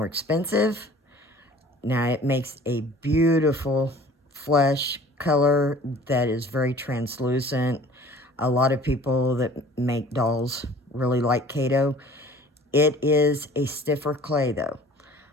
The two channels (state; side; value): normal; both; correlation 0.48